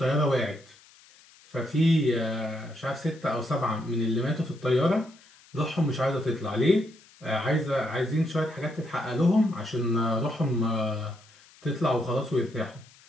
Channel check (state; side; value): noise; left; hiss, 26 dB below the sound